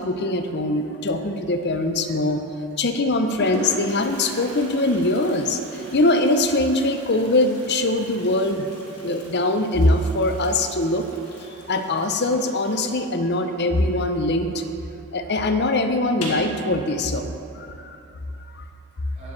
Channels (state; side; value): normal; both; correlation 0.16